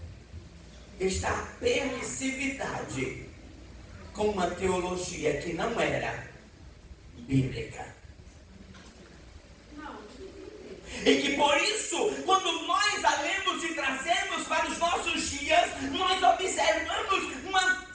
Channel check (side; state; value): both; identical; correlation 1.00